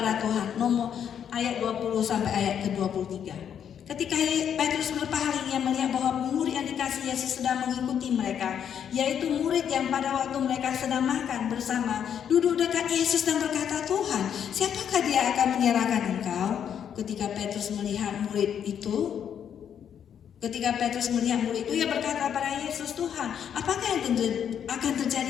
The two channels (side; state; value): right; quieter; 8.6 dB